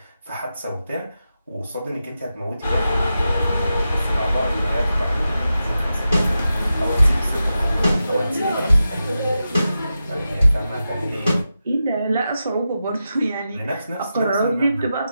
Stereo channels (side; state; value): both; inverted; correlation -0.90